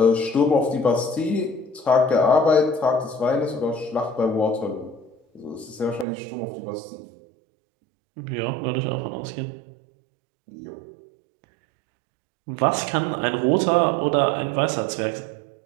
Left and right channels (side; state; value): left; drops out; at 6.1 s